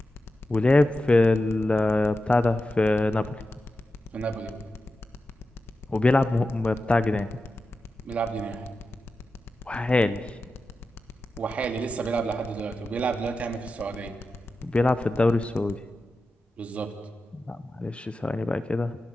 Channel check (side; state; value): both; normal; correlation 0.92